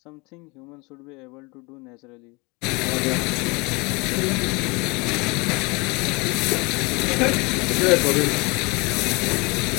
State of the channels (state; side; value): quieter; right; 27.3 dB